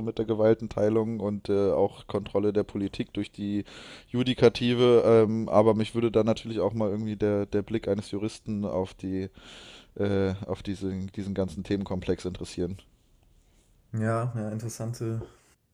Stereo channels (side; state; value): both; identical; correlation 1.00